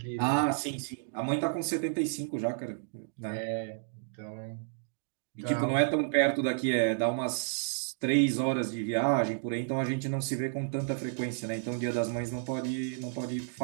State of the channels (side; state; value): left; silent; digital silence